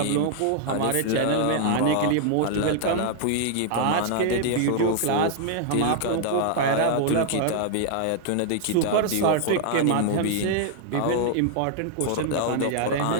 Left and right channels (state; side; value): different; both; correlation -0.01